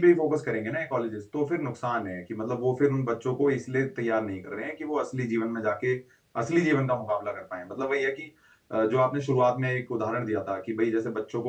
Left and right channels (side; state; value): both; identical; correlation 1.00